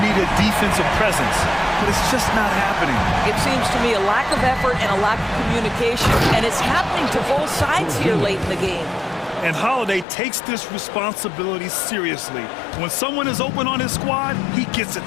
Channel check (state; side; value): drops out; right; at 10.1 s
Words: need a defensive presence, but it's just not happening. It seems to me a lack of effort and a lack of communication, and it's happening to both sides here late in the game. And Holiday takes this responsibility seriously. When someone is open on his squad, he gets it